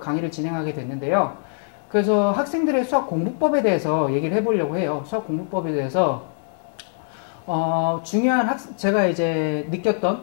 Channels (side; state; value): right; silent; 64 dB below the other